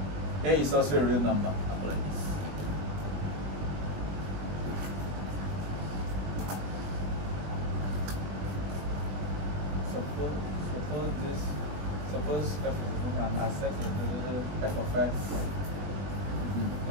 A is also a real number. Suppose f and I set f of x.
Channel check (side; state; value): left; late; 21 ms